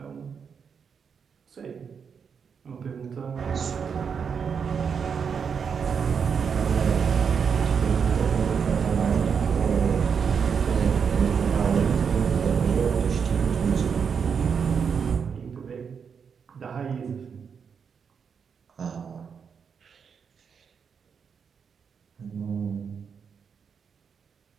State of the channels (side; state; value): left; quieter; 6.5 dB